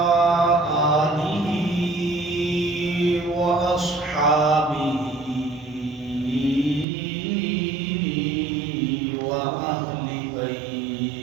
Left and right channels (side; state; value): left; drops out; at 6.9 s